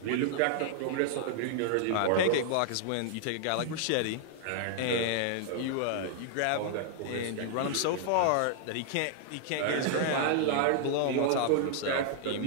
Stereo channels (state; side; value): different; both; correlation -0.01